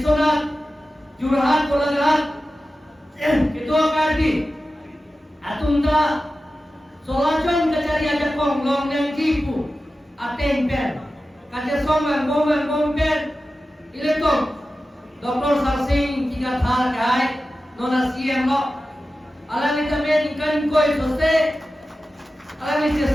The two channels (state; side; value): normal; both; correlation 0.94